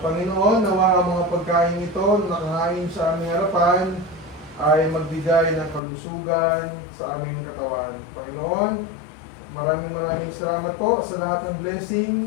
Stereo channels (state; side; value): drops out; right; at 5.8 s